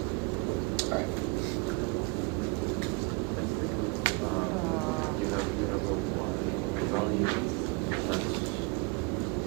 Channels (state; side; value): quieter; left; 28.3 dB